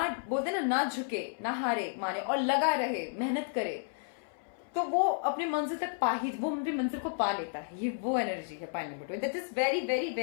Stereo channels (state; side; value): silent; right; 56 dB below the other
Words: बोलते ना, ना झुके, ना हारे माने, और लगा रहे, मेहनत करे, तो वो अपने मंजिल तक वो अपनी मंजिल को पा लेता है। ये वो एनर्जी है pile number 2, that is very very